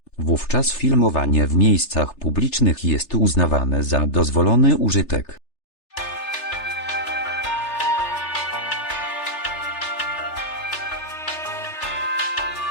wówczas filmowanie w miejscach publicznych jest uznawane za dozwolony użytek.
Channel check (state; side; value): late; right; 3.3 ms